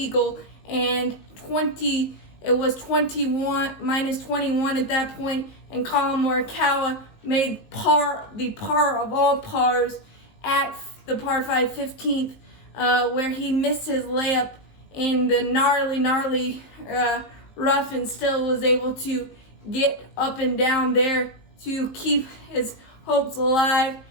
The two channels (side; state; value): right; late; 19 ms